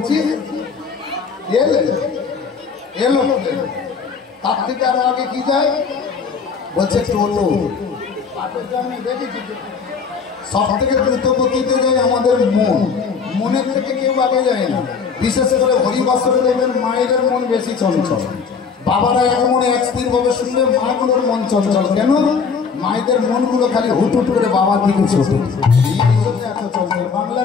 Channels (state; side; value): quieter; right; 5.7 dB